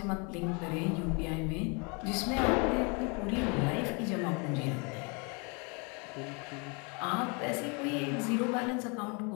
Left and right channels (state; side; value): quieter; right; 32.5 dB